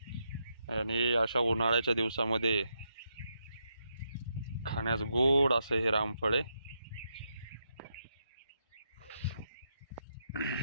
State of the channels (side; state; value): both; inverted; correlation -0.82